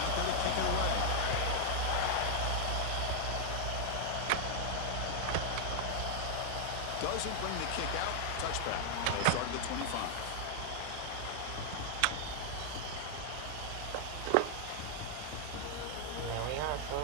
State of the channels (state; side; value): different; both; correlation 0.00